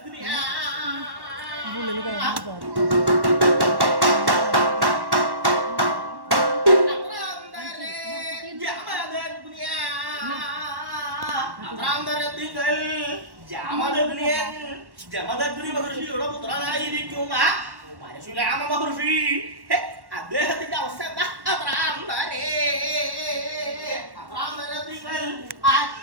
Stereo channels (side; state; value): left; late; 1.1 ms